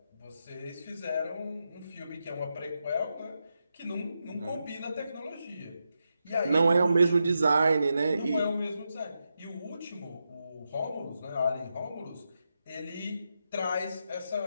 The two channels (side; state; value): both; inverted; correlation -0.87